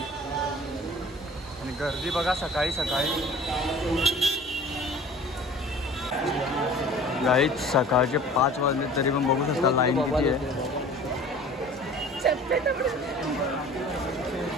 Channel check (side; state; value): both; normal; correlation 0.44